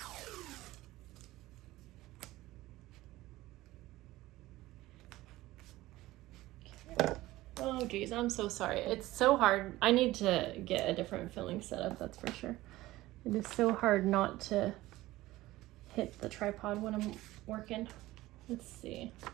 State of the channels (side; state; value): left; quieter; 17.4 dB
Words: Okay. Oh geez, I'm so sorry. It's so hard. I need to get a different filling setup, that's for sure. It is so hard not to hit the tripod when I'm working. Let's see,